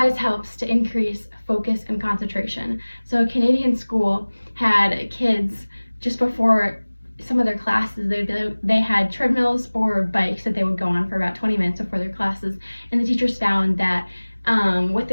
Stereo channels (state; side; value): inverted; both; correlation -1.00